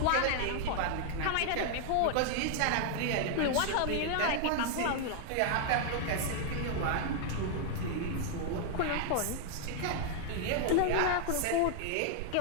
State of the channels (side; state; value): both; different; correlation 0.00